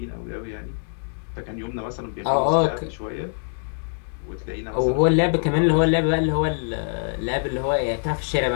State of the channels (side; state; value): right; silent; digital silence